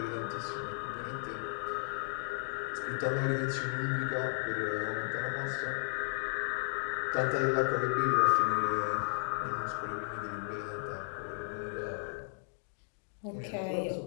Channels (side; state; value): right; silent; digital silence